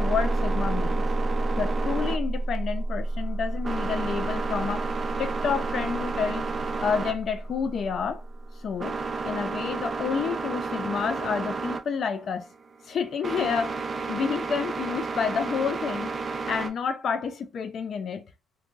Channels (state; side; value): normal; both; correlation 0.80